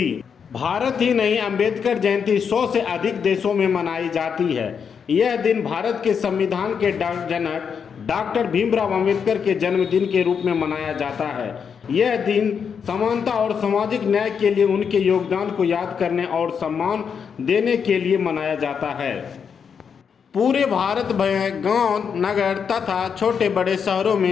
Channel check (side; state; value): right; quieter; 6.8 dB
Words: भारत ही नहीं, अंबेडकर जयंती 100 से अधिक देशों में मनाई जाती है। यह दिन भारत के संविधान के जनक डॉक्टर भीमराव अंबेडकर के जन्मदिन के रूप में मनाया जाता है। यह दिन समानता और सामाजिक न्याय के लिए उनके योगदान को याद करने और सम्मान देने के लिए मनाया जाता है। पूरे भारत में गांव, नगर तथा छोटे बड़े शहरों